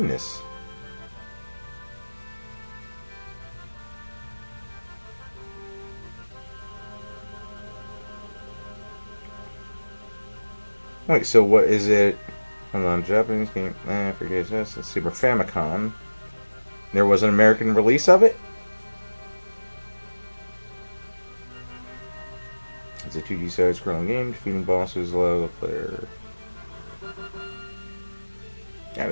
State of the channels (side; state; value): both; inverted; correlation -1.00